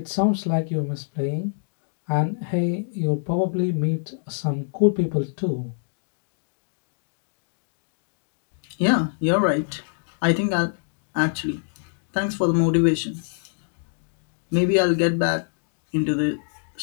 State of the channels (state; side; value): silent; right; digital silence